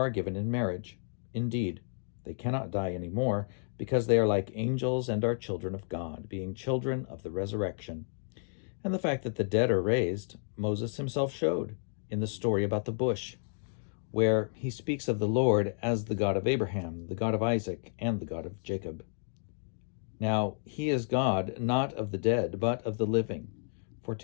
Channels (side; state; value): right; silent; digital silence